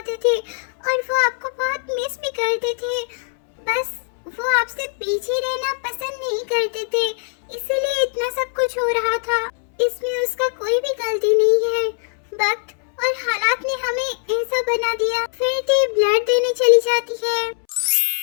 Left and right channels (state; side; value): silent; right; 65 dB below the other